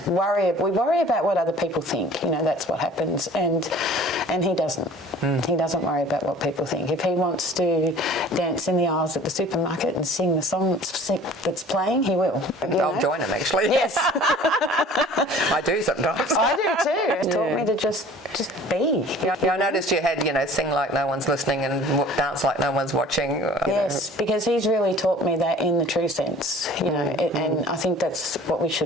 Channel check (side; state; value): both; normal; correlation 0.47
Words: worry about what other people think. You know, that's what happens. And he doesn't. He doesn't worry about what people think. If he wants to dance in the aisles at the supermarket and sing the song that's playing, he will. I'll join him, actually. Yes. I I do sometimes. I do too. It taught me to just be. Yeah, I noticed you had, sing like no one's listening and dance like no one's watching. Yes, because he's really taught me that in the true sense, and I think that's what we